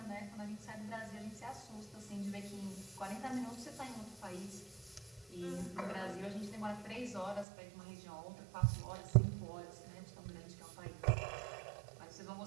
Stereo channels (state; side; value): drops out; left; at 7.5 s